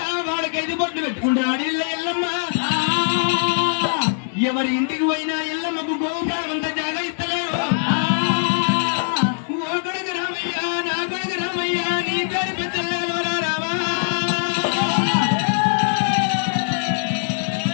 వాడకైదు బొట్లు పెట్టుకుంటా అడిల్ల ఎల్లమ్మ. ఎవరి ఇంటికి పోయినా ఎల్లమ్మకు గోపురాలంతా జాగా ఇస్తలేరు. ఓ కొడుకు రామయ్య, నా కొడుకు రామయ్య, నీ పేరు పెద్దల్లారా రామా.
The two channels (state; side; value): silent; right; 64 dB below the other